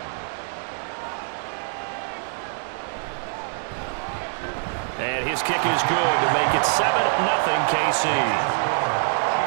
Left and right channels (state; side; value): silent; left; 62 dB below the other